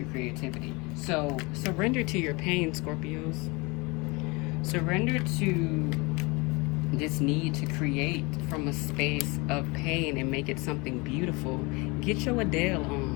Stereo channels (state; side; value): quieter; right; 26.5 dB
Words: creativity. So surrender to your pain, Scorpios. Surrender to this need to create from a space of pain and make it something beautiful. Get your Adele